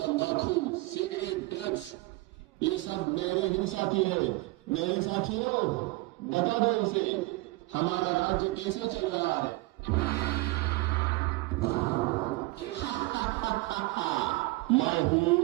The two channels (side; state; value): left; quieter; 21.9 dB